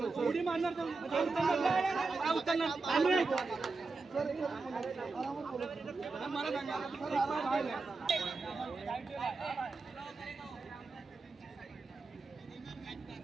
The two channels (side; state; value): left; quieter; 4.0 dB